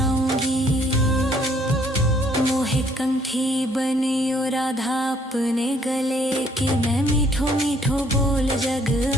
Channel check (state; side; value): normal; both; correlation 0.65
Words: मोहे कंठी बनियो राधा अपने गले की, मैं मीठो मीठो बोल जग